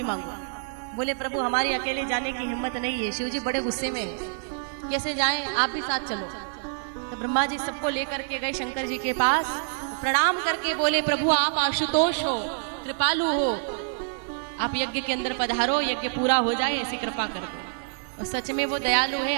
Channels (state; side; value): silent; left; 60 dB below the other